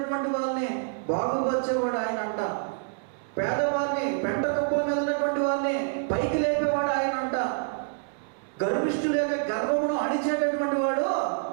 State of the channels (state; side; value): silent; left; 60 dB below the other